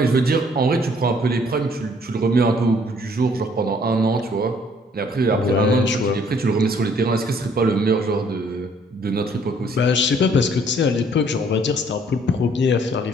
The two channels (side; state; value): both; normal; correlation 0.61